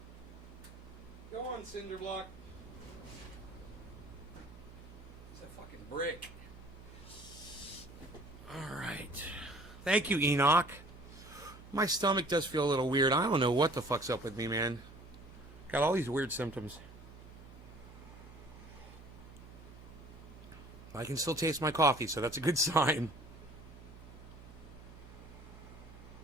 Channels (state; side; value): noise; right; hum, 17 dB below the sound